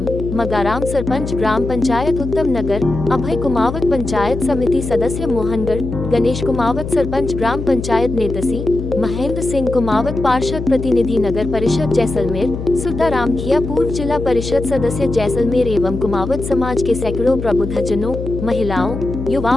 मगाराम सरपंच ग्राम पंचायत उत्तम नगर, अभय कुमावत पंचायत समिति सदस्य मोहनगढ़, गणेश कुमावत सरपंच ग्राम पंचायत नेतसी, महेंद्र सिंह कुमावत पार्षद प्रतिनिधि नगर परिषद जैसलमेर, सुता रामखिया पूर्व जिला परिषद सदस्य जैसलमेर एवं कुमावत समाज के सैकड़ों प्रबुद्धजनों, महिलाओं,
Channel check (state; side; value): noise; left; hum, 6 dB below the sound